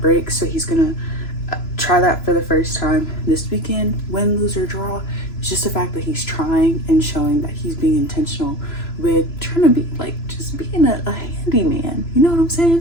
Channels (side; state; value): right; late; 3.0 ms